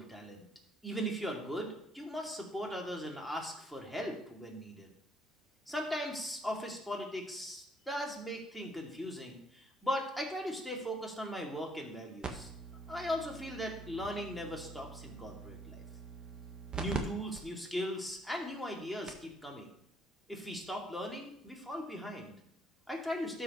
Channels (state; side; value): normal; both; correlation 0.67